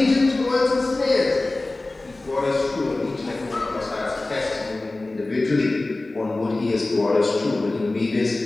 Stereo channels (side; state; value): right; quieter; 3.0 dB